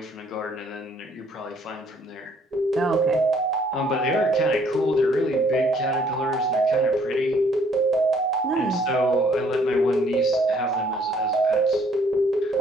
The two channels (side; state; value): both; normal; correlation 0.63